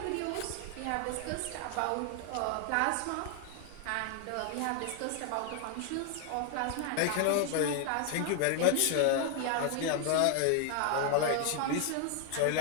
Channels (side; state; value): both; different; correlation 0.00